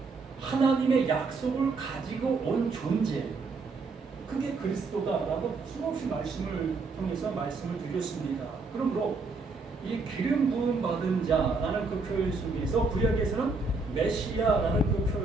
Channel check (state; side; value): quieter; left; 4.0 dB